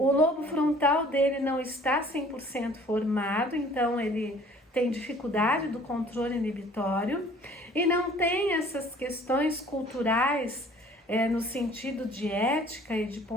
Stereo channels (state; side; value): normal; both; correlation 0.53